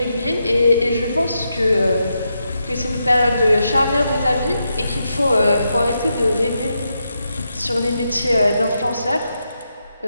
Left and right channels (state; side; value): inverted; both; correlation -0.84